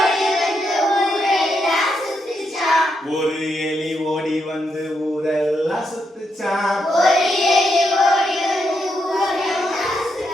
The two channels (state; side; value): normal; both; correlation 0.81